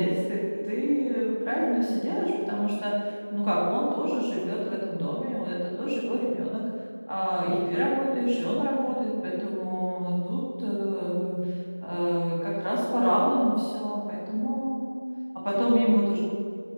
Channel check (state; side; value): inverted; both; correlation -1.00